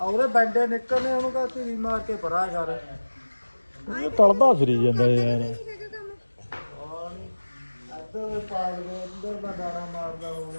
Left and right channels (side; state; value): both; inverted; correlation -1.00